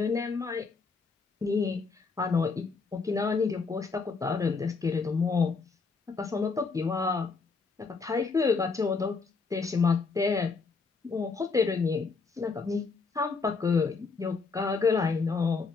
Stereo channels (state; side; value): quieter; right; 4.6 dB